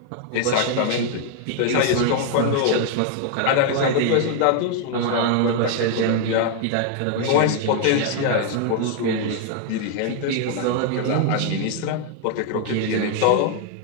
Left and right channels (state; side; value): different; both; correlation 0.00